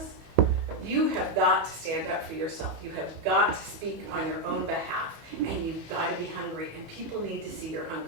you have got to stand up for yourself. You have got to speak on your own behalf, and you've got to be hungry, and people need to see your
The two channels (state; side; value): late; left; 18 ms